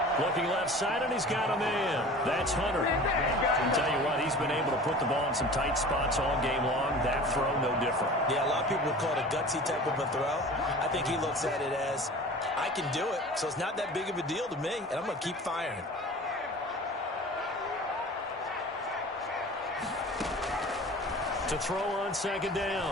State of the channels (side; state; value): both; normal; correlation 0.40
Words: Looking left side, and he's got a man. That's Hunter. I tell you what, he's been able to put the ball in some tight spots all game long. That throw, no different. Yeah, a lot of people would call it a gutsy type of a throw. I think he looks at it as, I can do it, so it's not that big of a deal to me, and I'm going to keep firing. To throw on second